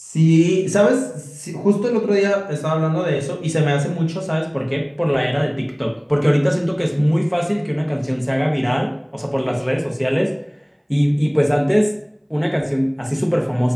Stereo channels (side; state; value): both; identical; correlation 1.00